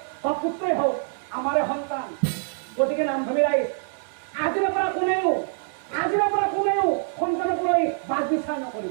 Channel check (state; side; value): silent; left; digital silence